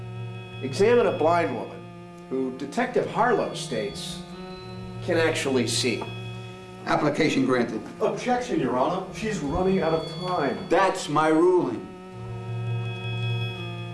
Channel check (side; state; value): both; identical; correlation 1.00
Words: examine a blind woman who Detective Harlow states can actually see. Application granted. Objection, Your Honor. She's running out of time. That's my ruling.